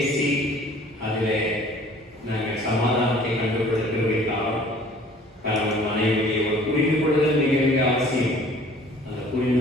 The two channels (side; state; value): both; normal; correlation 0.52